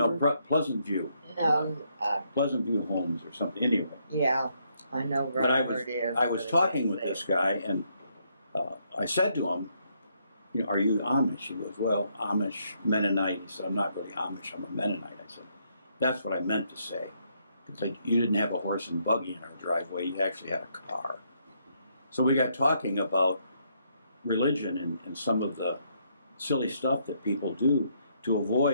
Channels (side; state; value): both; inverted; correlation -0.74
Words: Pleasant View. No, Pleasant View Homes or something. Anyway. yeah, I know But right where it is. I was talking with this guy, and I said to him, are you Amish? He goes, well, Amish, Mennonite. He said, I'm not really Amish, I'm a Mennonite. I said, that's what I meant to say. It's like you didn't have a horse and buggy in our driveway, you actually had a car. So we got talking about religion and some of the silly stuff that people do to